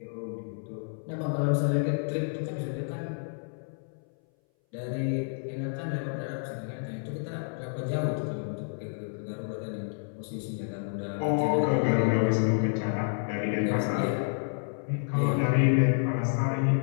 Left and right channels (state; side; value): silent; right; 58 dB below the other